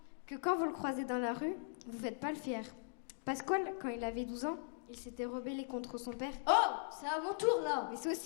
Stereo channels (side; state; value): right; silent; digital silence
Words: que quand vous le croisez dans la rue, vous ne faites pas le fier. Pasquale, quand il avait 12 ans, il s'était rebellé contre son père. Oh, c'est à mon tour là. Mais c'est